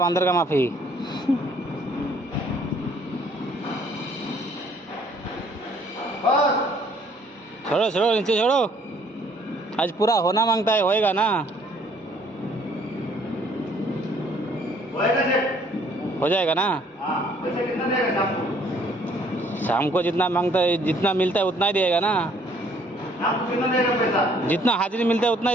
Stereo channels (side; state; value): both; normal; correlation 0.62